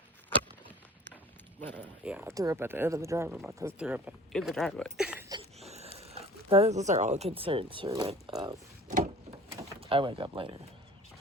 But yeah, I threw up at the end of the driveway. My cousin threw up in the driveway. Those are all concerns for when I wake up later.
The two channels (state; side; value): normal; both; correlation 0.45